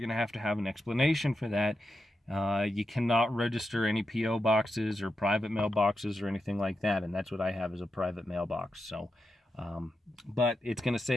going to have an explanation for that. You cannot register any P.O. boxes or private mailboxes or anything like that, and that's what I have, is a private mailbox. So, but it's going to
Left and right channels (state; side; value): normal; both; correlation 0.87